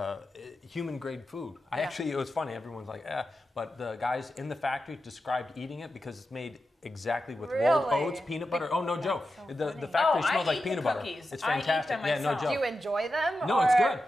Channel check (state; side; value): normal; both; correlation 0.91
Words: human grade food. It was funny. Everyone's like, but the guys in the factory described eating it because it's made exactly with rolled oats, peanut butter. Oh, no joke. So the factory smells like peanut butter. Cookies. It's fantastic. I eat them myself. No joke. Do you enjoy them? No, it's good.